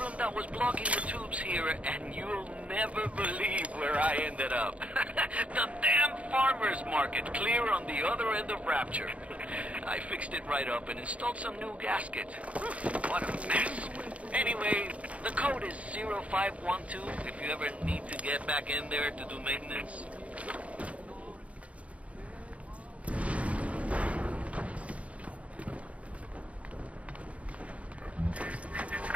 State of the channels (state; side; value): late; left; 0.064 ms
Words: that was blocking the tubes here, and you'll never believe where I ended up. The damn farmer's market, clear on the other end of Rapture. I fixed it right up and installed some new gaskets. What a mess. Anyway, the code is 0512 if you ever need to get back in there to do maintenance.